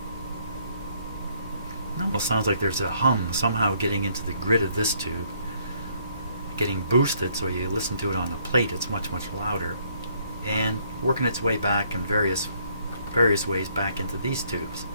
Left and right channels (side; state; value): both; inverted; correlation -0.67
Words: Almost sounds like there's a hum somehow getting into the grid of this tube, getting boosted, so you listen to it on the plate, it's much louder, and working its way back in various ways back into these tubes.